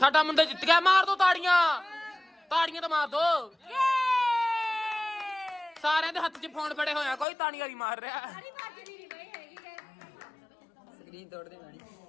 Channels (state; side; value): drops out; right; at 7.2 s